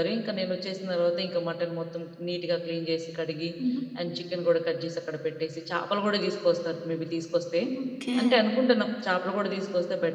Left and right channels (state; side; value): identical; both; correlation 1.00